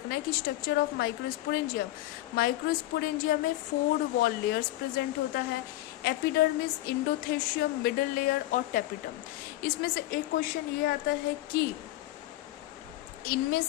है कि स्ट्रक्चर ऑफ माइक्रोस्पोरेंजियम, माइक्रोस्पोरेंजियम में 4 वॉल लेयर्स प्रेजेंट होता है, एपिडर्मिस, इंडोथेशियम, मिडल लेयर और टेपिटम। इसमें से एक क्वेश्चन ये आता है कि इनमें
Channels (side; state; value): right; quieter; 16.2 dB